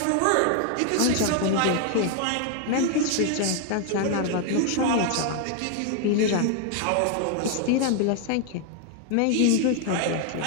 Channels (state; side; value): different; both; correlation 0.00